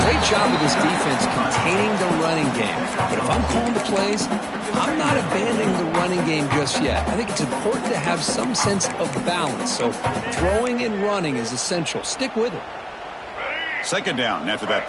great job of this defense containing the running game. But if I'm calling the plays, I'm not abandoning the running game just yet. I think it's important to have some sense of balance. So throwing and running is essential. Stick with it. 2nd down after that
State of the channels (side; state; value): both; identical; correlation 1.00